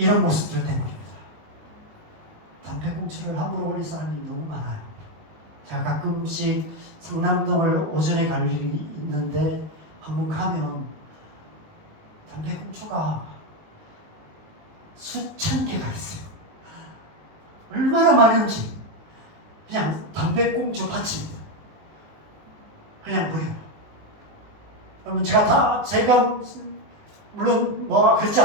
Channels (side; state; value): left; late; 19 ms